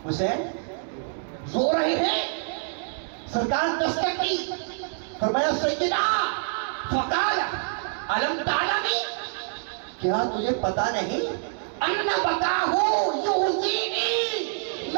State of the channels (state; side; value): silent; left; digital silence